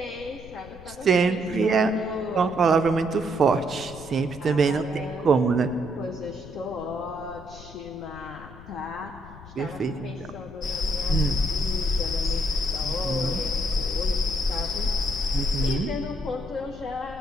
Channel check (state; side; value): noise; left; rumble, 17 dB below the sound